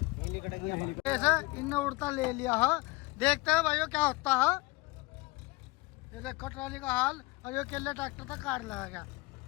ऐसे इनने उड़ता ले लिया है। देखते हैं भाइयों क्या होता है। ये देखो ट्राली का हाल, और ये केले ट्रैक्टर तक काट लगेगा।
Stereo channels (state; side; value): quieter; right; 22.2 dB